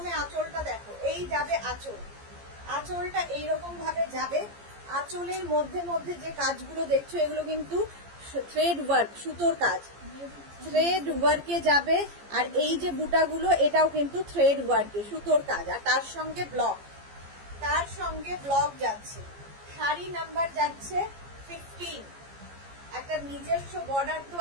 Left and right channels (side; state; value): left; late; 14 ms